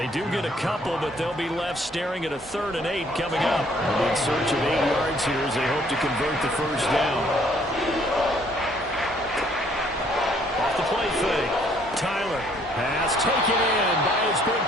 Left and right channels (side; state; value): both; normal; correlation 0.63